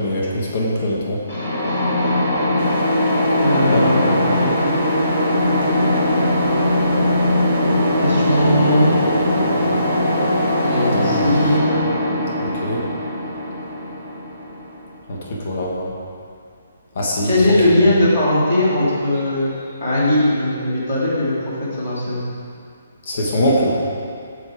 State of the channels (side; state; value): both; inverted; correlation -0.73